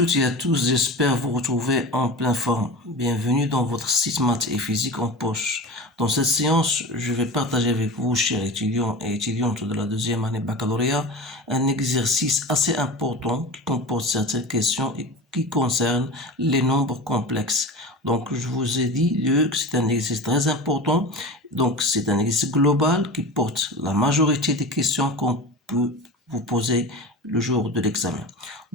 et à tous, j'espère vous retrouver en pleine forme. Bienvenue dans votre site maths et physique en poche. Dans cette séance, je vais partager avec vous, chers étudiants et étudiantes de la deuxième année baccalauréat, un exercice assez important qui comporte certaines questions et qui concerne les nombres complexes. Donc, je vous ai dit que c'est un exercice très important. Donc, c'est un exercice global qui porte la majorité des questions qu'on peut vous poser le jour de l'examen.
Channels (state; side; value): normal; both; correlation 0.30